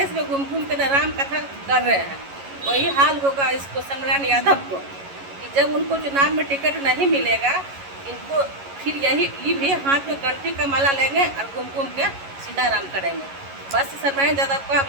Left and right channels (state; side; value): late; left; 11 ms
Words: में घूम घूम के राम कथा कर रहे हैं। वही हाल होगा इसको सर्वनारायण यादव को, कि जब उनको चुनाव में टिकट नहीं मिलेगा, इनको फिर ये भी हाथ में कंठी का माला लेंगे और घूम घूम के सीताराम करेंगे। बस सर्वनारायण यादव का